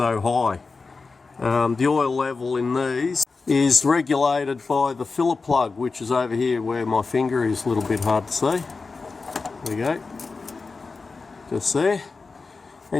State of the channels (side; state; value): right; quieter; 4.2 dB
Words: high. The oil level in these is regulated by the filler plug, which is over here where my finger is, a little bit hard to see. There we go, just there.